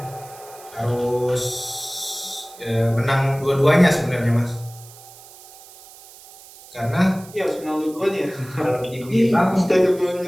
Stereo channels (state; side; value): noise; right; hiss, 20 dB below the sound